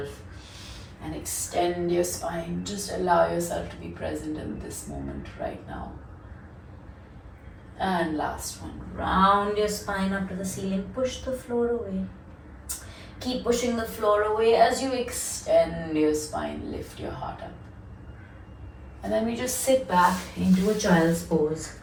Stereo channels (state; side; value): identical; both; correlation 1.00